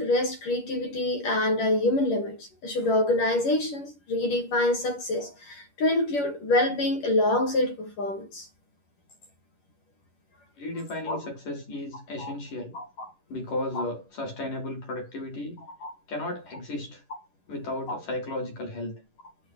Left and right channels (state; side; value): late; right; 11 ms